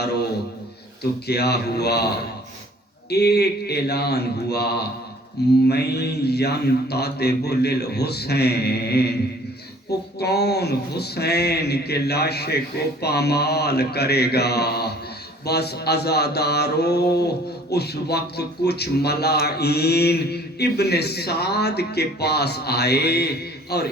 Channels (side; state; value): both; normal; correlation 0.53